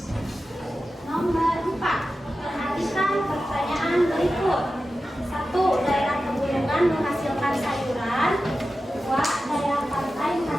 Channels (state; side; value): normal; both; correlation 0.93